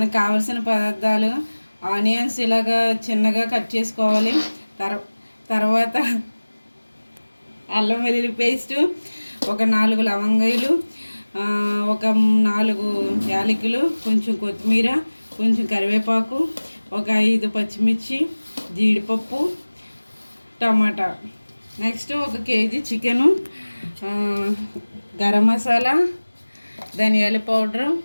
కావలసిన పదార్థాలు: ఆనియన్స్ ఇలాగా చిన్నగా కట్ చేసుకోవాలి. తర్వాత అల్లం వెల్లుల్లి పేస్టు, ఒక 4 లవంగాయలు, ఒక 4 యాలకులు, కొంచెం కొత్తిమీర, కొంచెం కరివేపాకు, ఒక 5 పచ్చిమిర్చి, జీడిపప్పు, టమాటా. Next 1 KG chicken, garam masala, ధనియాల పౌడరు,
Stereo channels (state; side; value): inverted; both; correlation -1.00